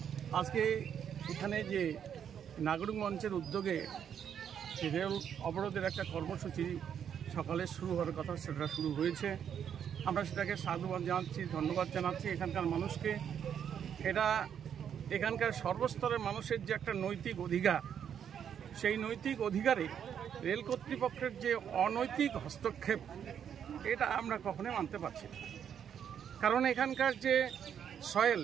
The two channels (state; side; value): quieter; left; 8.5 dB